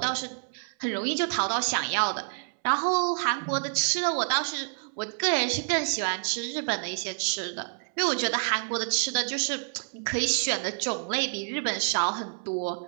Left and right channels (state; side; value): silent; left; 59 dB below the other